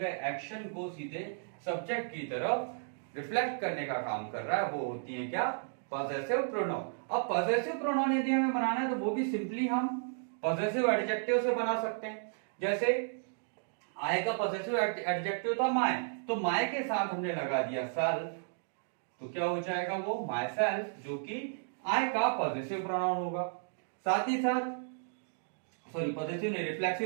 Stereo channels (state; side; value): silent; left; digital silence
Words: एक्शन को सीधे सब्जेक्ट की तरफ रिफ्लेक्ट करने का काम कर रहा है, वो होती है क्या, पॉसेसिव प्रोनाउन। अब पॉसेसिव प्रोनाउन यदि हमें बनाना है तो वो भी सिंपली हम पॉसेसिव एडजेक्टिव से बना सकते हैं। जैसे आई का पॉसेसिव एडजेक्टिव था माय, तो माय के साथ हमने लगा दिया सेल्फ, तो क्या हो जाएगा वो माय सेल्फ, जो कि आई का पॉसेसिव प्रोनाउन होगा। साथ ही साथ सॉरी पॉसेसिव नहीं,